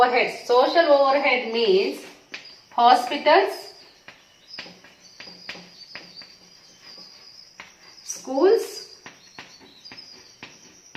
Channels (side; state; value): both; identical; correlation 1.00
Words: Social overhead means hospitals, schools,